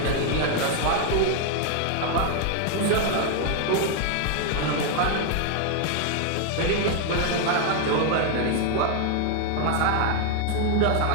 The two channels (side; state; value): both; different; correlation 0.00